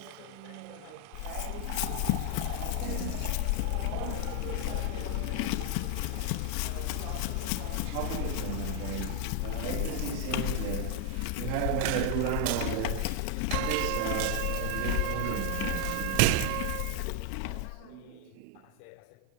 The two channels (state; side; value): different; both; correlation 0.00